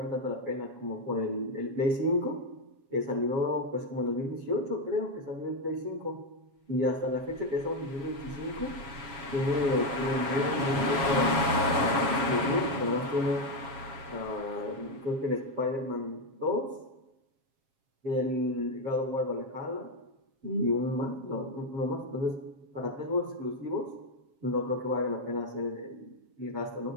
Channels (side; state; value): left; late; 7.1 ms